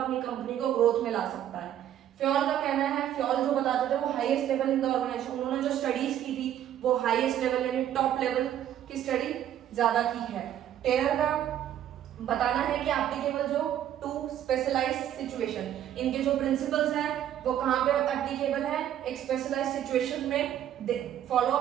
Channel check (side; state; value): left; quieter; 11.0 dB